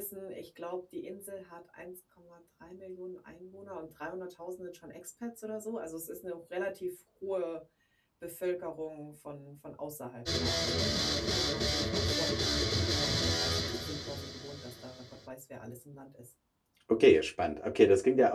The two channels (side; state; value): both; identical; correlation 1.00